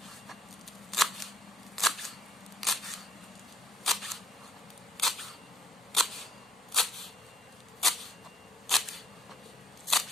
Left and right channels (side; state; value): both; normal; correlation 0.64